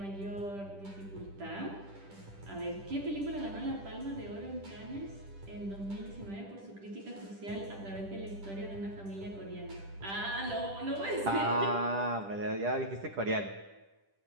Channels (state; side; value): late; left; 10 ms